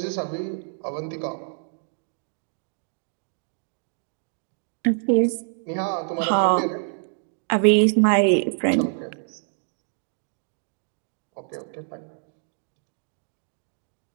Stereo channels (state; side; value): silent; left; digital silence